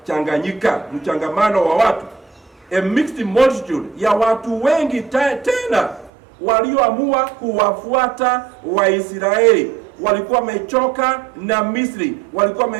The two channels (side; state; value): left; drops out; at 6.1 s